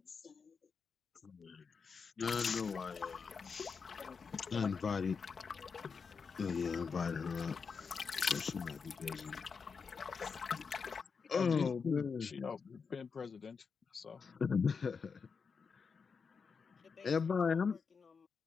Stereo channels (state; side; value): quieter; right; 5.5 dB